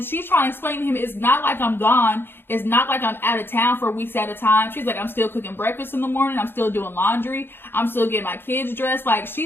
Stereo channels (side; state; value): right; late; 0.10 ms